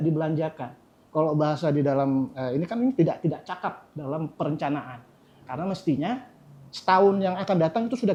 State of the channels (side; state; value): both; identical; correlation 1.00